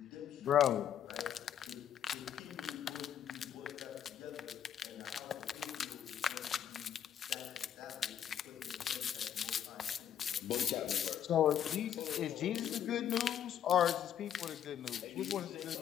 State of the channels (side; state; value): right; quieter; 9.7 dB